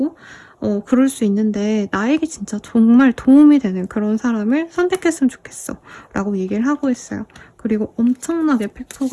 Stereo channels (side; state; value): both; identical; correlation 1.00